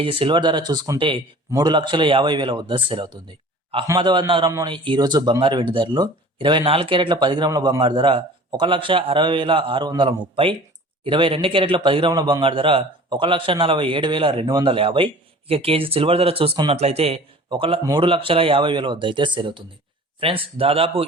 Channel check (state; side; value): normal; both; correlation 0.44